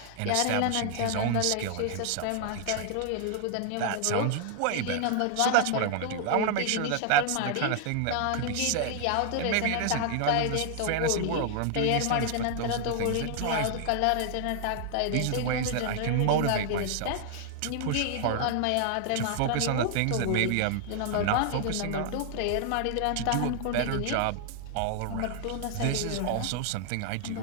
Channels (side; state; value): both; different; correlation 0.00